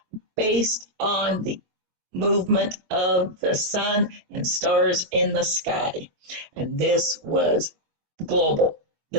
based on the movement of the sun and stars in the sky. And this was global.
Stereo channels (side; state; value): left; late; 22 ms